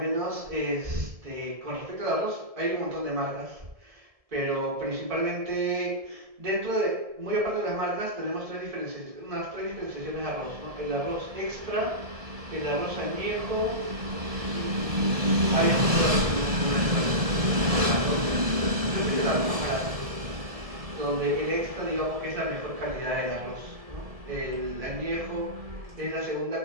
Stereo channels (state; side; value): late; left; 1.7 ms